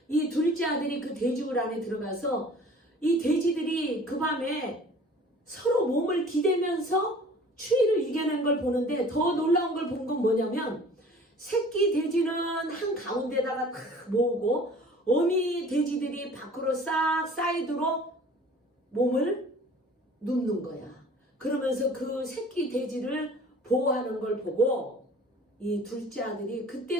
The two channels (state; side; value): normal; both; correlation 0.48